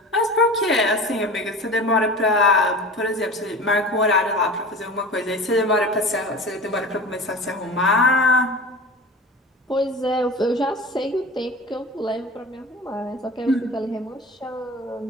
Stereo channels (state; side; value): normal; both; correlation 0.35